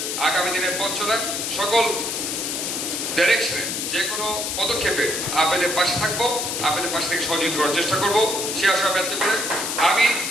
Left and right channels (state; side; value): noise; left; hiss, 2 dB below the sound